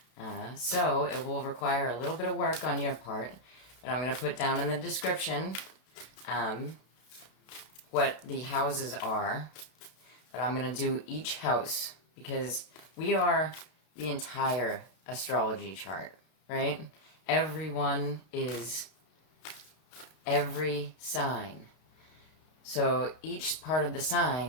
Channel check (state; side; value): late; right; 32 ms